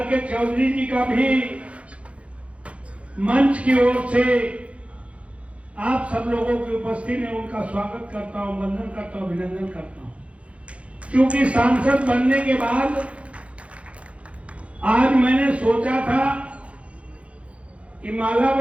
के चौधरी जी का भी मंच की ओर से आप सब लोगों की उपस्थिति में उनका स्वागत करता हूं, वंदन करता हूं, अभिनंदन करता हूं। क्योंकि सांसद बनने के बाद आज मैंने सोचा था कि माला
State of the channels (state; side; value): late; left; 0.062 ms